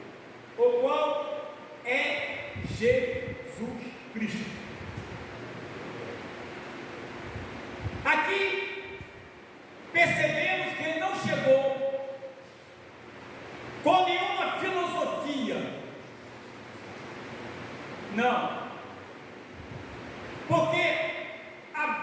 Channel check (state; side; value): identical; both; correlation 1.00